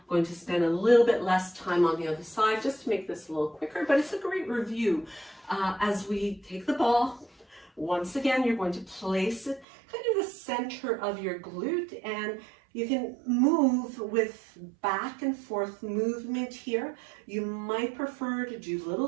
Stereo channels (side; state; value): left; drops out; at 9.7 s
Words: going to spend a little bit less time on the other side just to make this a little quicker, but it's a great review. As we take the ball, once again, you're going to place it kind of the center of your glute, and you can move with back and forth movement here. You might prefer to do little